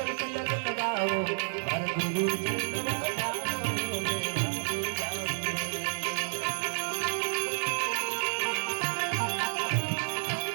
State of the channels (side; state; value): left; silent; 58 dB below the other